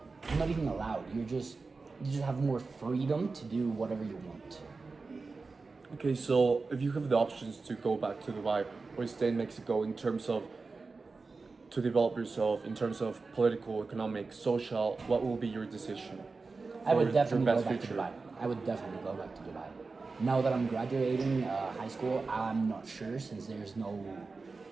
not even allowed, you just have more freedom to do whatever you want. Okay, so if you have the options to go back to Dubai or stay in Mexico in terms of to develop yourself in terms of political, economic, social, what will be your decision? I would definitely go best back to future? Dubai. I would definitely go back to Dubai. Now that I'm graduating high school, I'm not sure, since there's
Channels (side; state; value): left; quieter; 4.1 dB